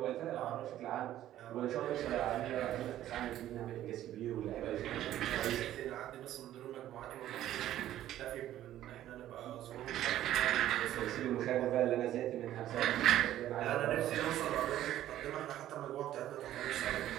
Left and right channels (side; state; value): left; quieter; 12.9 dB